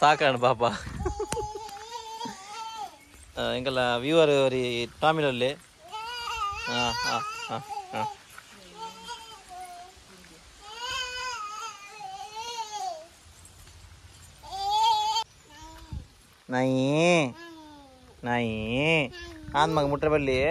ಸಾಕಾಣ ಪಾಪ ಎಂಕಲ್ಲ ವ್ಯೂವರ್ ಅವರಿ ಟಾಮಿಲಲ್ಲಿ ಹಾಂ ಹಾಂ ಹಾಂ ಹಾಂ ನಾಯಿ ನಾಯಿ ಆನ್ ಮಗ ಮುಟ್ರೆ ಬಲ್ಲಿ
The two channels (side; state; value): both; identical; correlation 1.00